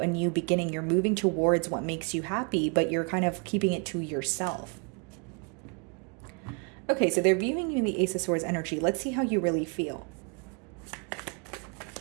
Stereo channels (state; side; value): quieter; left; 35.8 dB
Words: beginning. You're moving towards what makes you happy, but you're kind of keeping it to yourself. Okay, so they're viewing you in the Ace of Swords energy. Let's see how you really feel.